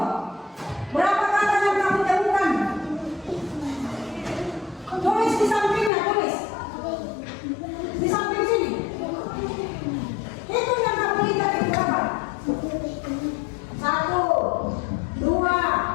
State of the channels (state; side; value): drops out; right; at 5.9 s